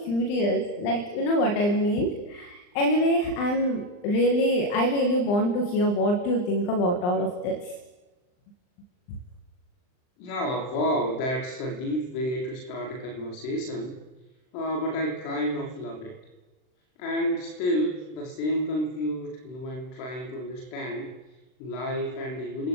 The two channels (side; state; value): right; late; 39 ms